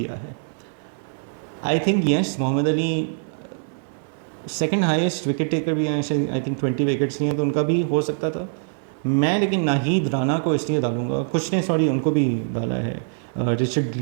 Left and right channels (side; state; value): left; silent; 63 dB below the other